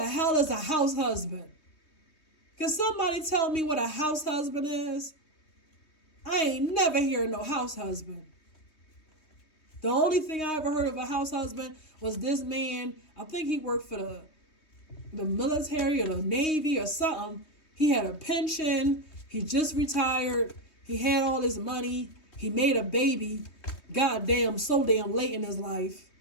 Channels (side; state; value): right; late; 3.2 ms